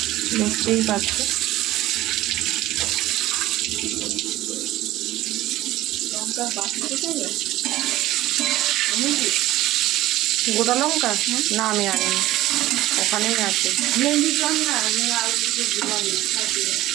দেখতেই পাচ্ছ। গোটা লঙ্কা না, আমি আনিনি, ওখানেই আছে।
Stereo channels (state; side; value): quieter; left; 15.9 dB